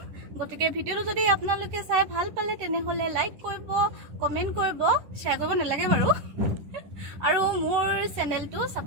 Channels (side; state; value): left; late; 10 ms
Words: গতিকে ভিডিঅ'টো যদি আপোনালোকে চাই ভাল পালে তেনেহ'লে লাইক কৰিব কমেণ্ট কৰিব শ্বেয়াৰ কৰিব নালাগে বাৰু আৰু মোৰ চেনেলটো